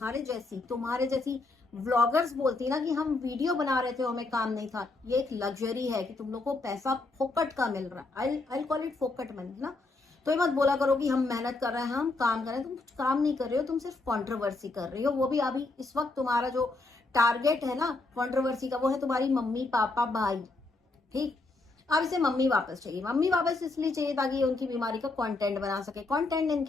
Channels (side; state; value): right; quieter; 3.3 dB